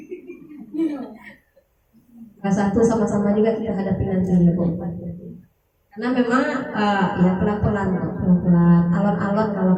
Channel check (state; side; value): identical; both; correlation 1.00